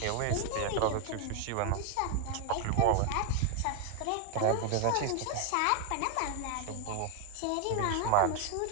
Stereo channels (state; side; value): different; both; correlation 0.01